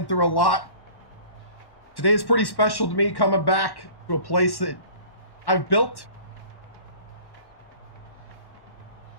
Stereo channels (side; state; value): right; late; 1.1 ms